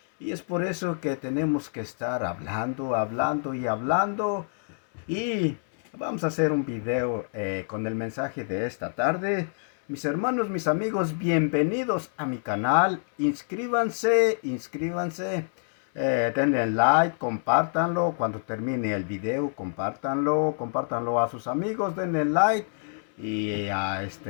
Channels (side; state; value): right; silent; 60 dB below the other